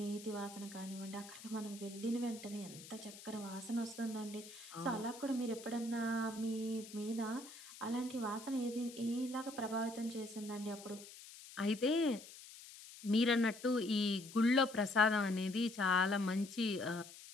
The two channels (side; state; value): left; noise; hiss, 16 dB below the sound